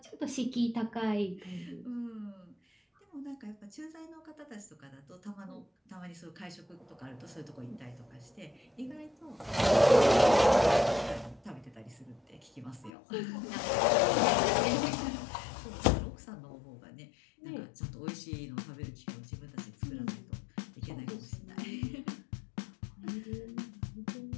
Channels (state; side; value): drops out; right; at 12.9 s